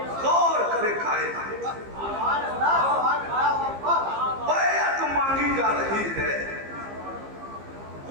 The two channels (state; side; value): late; left; 15 ms